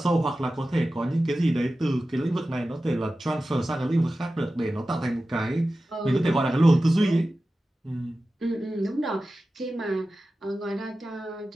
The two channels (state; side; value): normal; both; correlation 0.94